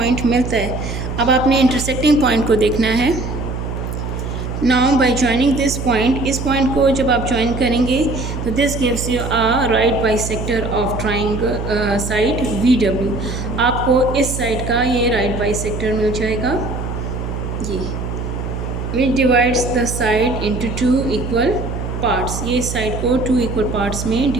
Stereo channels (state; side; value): noise; right; hum, 5 dB below the sound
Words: मिलता है, अब आपने इंटरसेक्टिंग पॉइंट को देखना है. Now by joining this point, इस पॉइंट को जब आप ज्वाइन करेंगे तो this gives you a right bisector of triangle side VW. आपको इस साइड का ये राइट बाइसेक्टर मिल जाएगा. ये विच divides the side into 2 equal parts. ये इस साइड को 2 इक्वल पार्ट्स में